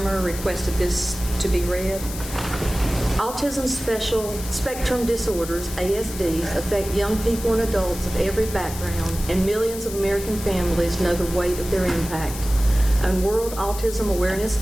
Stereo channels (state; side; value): noise; left; hiss, 11 dB below the sound